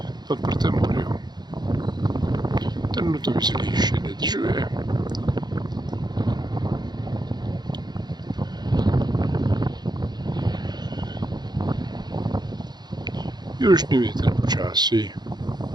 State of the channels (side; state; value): left; late; 0.20 ms